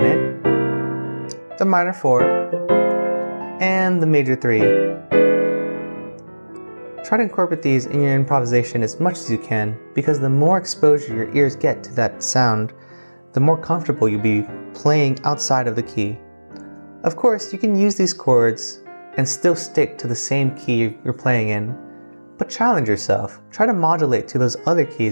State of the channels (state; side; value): inverted; both; correlation -1.00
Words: the minor 4, and the major 3. Try to incorporate these in your improvisation as much as you can, because the more exposure your ears get to that sound, the more comfortable you'll be playing outside of the key. Of course, you can use these chords and still stick to the same key you're playing in, but challenge yourself. Try to modulate to those other